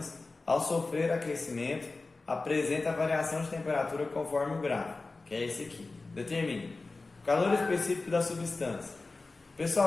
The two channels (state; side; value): quieter; right; 3.5 dB